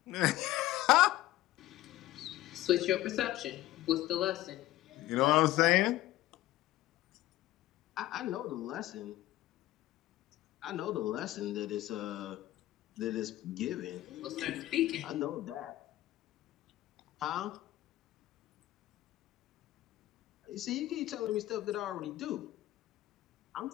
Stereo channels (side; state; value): right; quieter; 15.7 dB